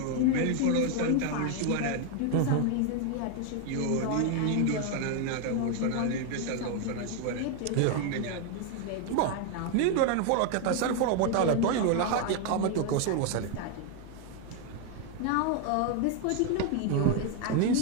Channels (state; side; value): different; both; correlation 0.01